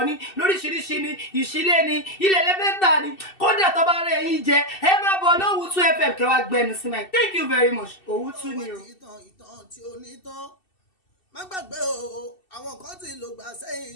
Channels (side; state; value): right; late; 2.7 ms